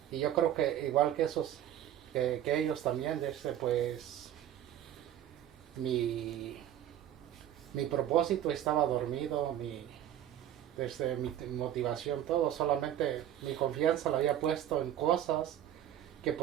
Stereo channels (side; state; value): left; quieter; 11.3 dB